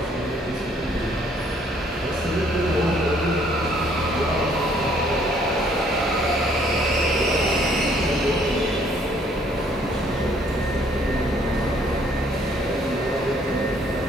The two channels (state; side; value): normal; both; correlation 0.63